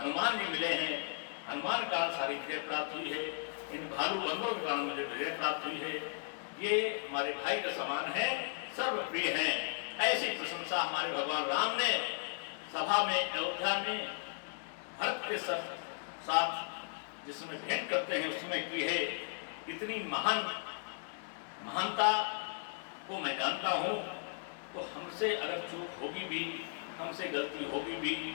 जी मिले हैं, हनुमान के कारण सारी विजय प्राप्त हुई है, इन भालू बंदरों के कारण मुझे विजय प्राप्त हुई है, ये हमारे भाई के समान है, सर्वप्रिय है। ऐसी प्रशंसा हमारे भगवान राम ने सभा में अयोध्या में भक्त के साथ जिसमें भेंट करते हैं उसमें की है। इतनी महानता को मैं जानता हूँ, तो हमसे अगर चूक होगी भी, हमसे गलती होगी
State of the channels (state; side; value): silent; right; digital silence